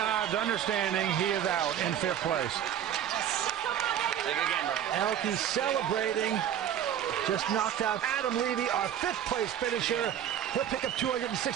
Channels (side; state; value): left; quieter; 10.0 dB